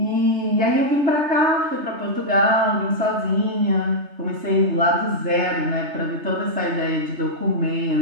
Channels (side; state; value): left; late; 3.3 ms